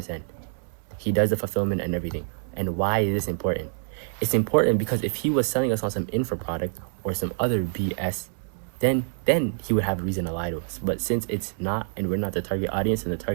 He does the fulfillment and everything. And why is this important? It's important because if he was selling us on some info product or some other BS, then he would have a reason to lie to us. But since it's not, and we're not the target audience, and the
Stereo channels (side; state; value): left; silent; 61 dB below the other